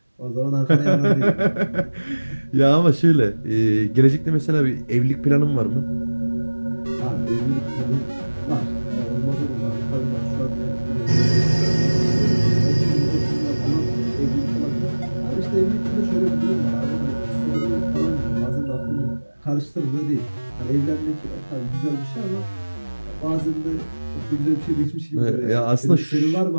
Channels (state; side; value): inverted; both; correlation -1.00